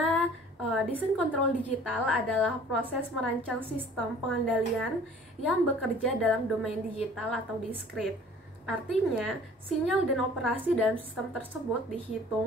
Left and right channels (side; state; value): both; normal; correlation 0.50